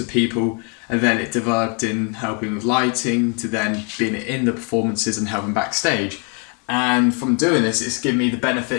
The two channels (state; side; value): quieter; right; 37.3 dB